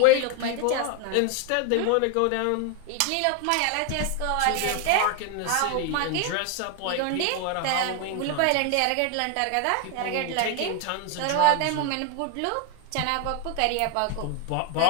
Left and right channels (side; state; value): both; different; correlation 0.01